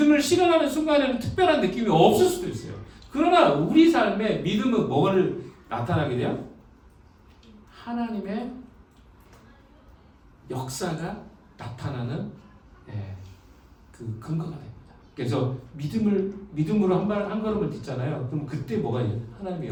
실현하는 순간에는 특별한 느낌이 없을 수도 있어요. 그러나 우리 삶에 믿음은 뭐를 나타나게 돼요? 하나님의 역사가 나타나는 그 근거가 됩니다. 그래서 믿음으로 한 걸음을 딛잖아요. 그럼 그때 뭐가 있어요? 하나님의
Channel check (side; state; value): both; identical; correlation 1.00